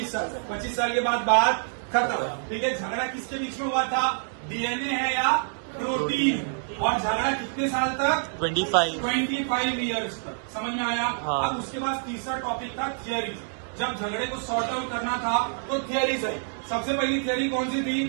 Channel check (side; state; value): left; silent; 60 dB below the other